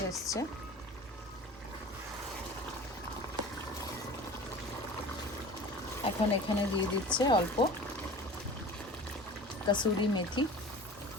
এসছে। এখন এখানে দিয়ে দিচ্ছে অল্প কসুরি মেথি।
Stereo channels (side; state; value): both; normal; correlation 0.39